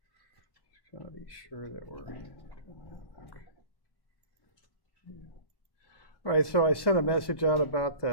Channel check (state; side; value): late; right; 1.2 ms